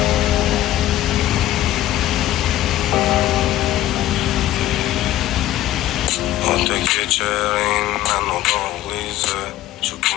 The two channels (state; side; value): quieter; right; 14.0 dB